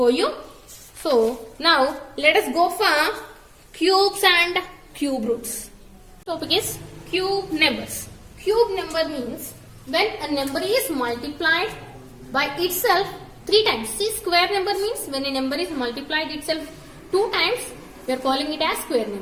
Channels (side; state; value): both; identical; correlation 1.00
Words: you. So, now let us go for cubes and cube roots. Topic is cube numbers. Cube number means when a number is multiplied by itself 3 times. See, square number means when a number is multiplied itself 2 times. we are calling it as square